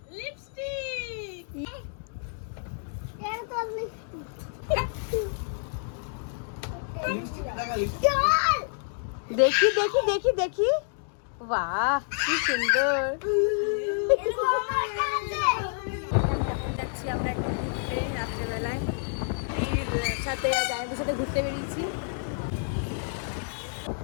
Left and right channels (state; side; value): silent; right; digital silence